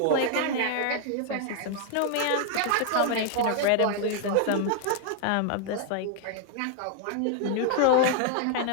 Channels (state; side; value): different; both; correlation 0.00